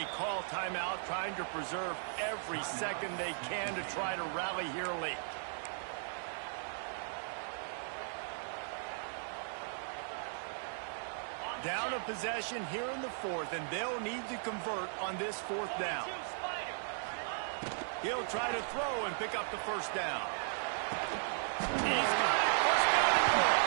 call timeout, trying to preserve every second they can to try to rally here late. Down a possession here in the fourth, and they'll need to convert on this fourth down. He'll try to throw and pick up the first down. He's got it. First down and more.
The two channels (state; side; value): silent; left; digital silence